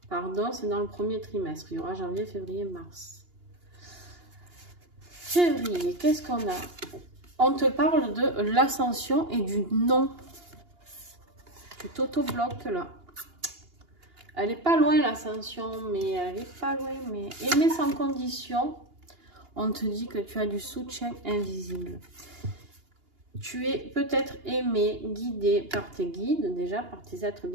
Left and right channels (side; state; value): left; late; 2.8 ms